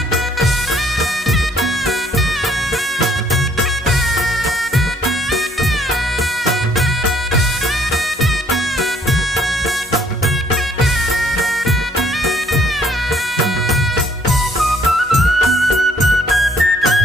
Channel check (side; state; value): both; normal; correlation 0.63